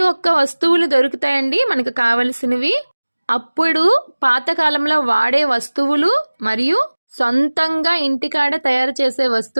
ఒక్క వస్తువులు దొరుకుతాయండి మనకు కావలసినవి. అప్పుడు పాతకాలంలో వాడే వస్తువులు మరియు సొంతంగా ఇంటికాడ తయారు చేసే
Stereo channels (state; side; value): inverted; both; correlation -1.00